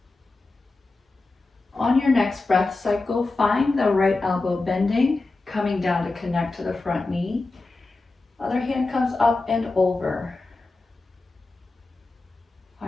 On your next breath cycle, find the right elbow bending, coming down to connect to the front knee. Other hand comes up and over.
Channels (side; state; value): right; quieter; 3.4 dB